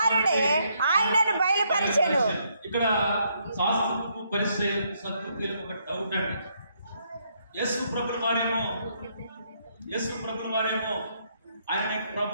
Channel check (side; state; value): both; inverted; correlation -0.73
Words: ఆయనను బయలుపరిచెను. ఇక్కడ శాస్త్రపు పరిచయం సత్పురులకు ఒక డౌట్ అండి. యేసు ప్రభువు వారేమో ఆయన